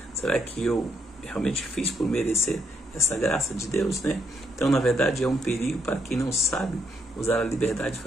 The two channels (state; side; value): normal; both; correlation 0.75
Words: Será que eu realmente fiz por merecer essa graça de Deus, né? Então, na verdade, é um perigo para quem não sabe usar a liberdade de